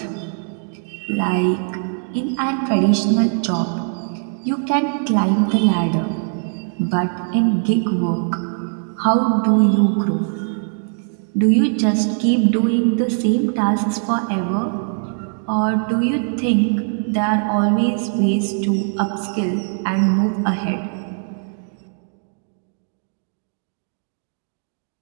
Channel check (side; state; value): left; silent; 60 dB below the other